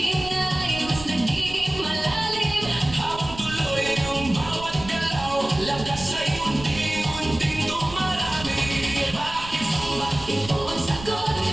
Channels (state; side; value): noise; right; rumble, 14 dB below the sound